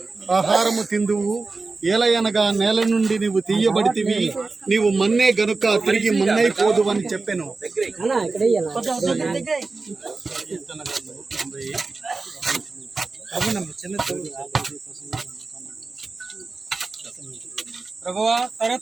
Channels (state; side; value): quieter; left; 3.8 dB